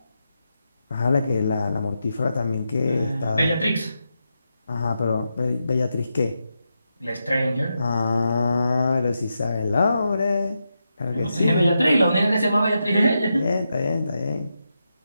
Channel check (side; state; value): both; inverted; correlation -0.86